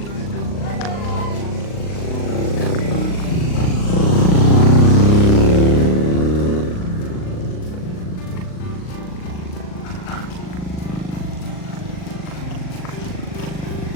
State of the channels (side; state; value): right; late; 39 ms